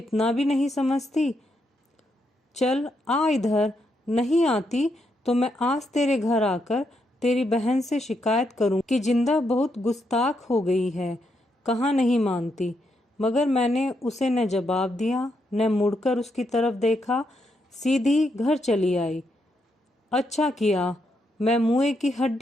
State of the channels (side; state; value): both; normal; correlation 0.80